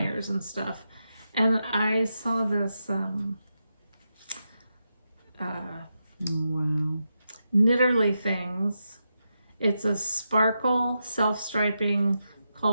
and stuff. And I saw this Oh, wow. Knitterly Things. It's a sparkle self-striping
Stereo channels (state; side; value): inverted; both; correlation -0.87